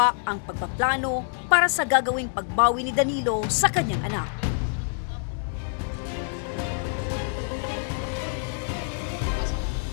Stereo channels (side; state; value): right; silent; digital silence